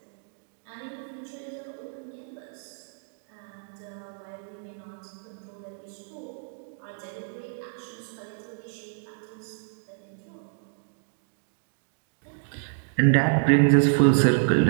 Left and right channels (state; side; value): silent; left; digital silence